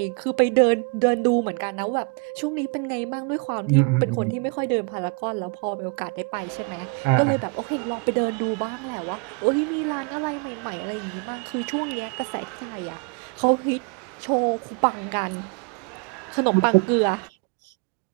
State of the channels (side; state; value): left; quieter; 32.3 dB